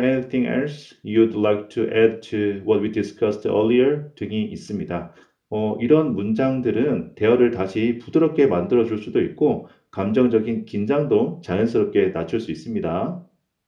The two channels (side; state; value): both; identical; correlation 1.00